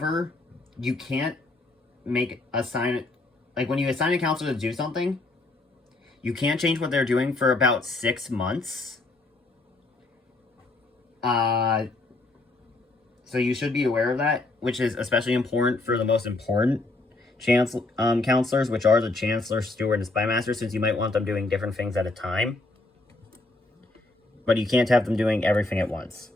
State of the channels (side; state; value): right; quieter; 3.1 dB